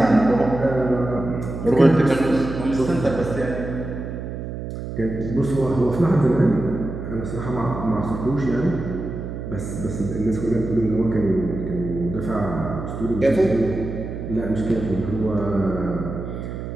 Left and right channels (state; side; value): noise; right; hum, 7 dB below the sound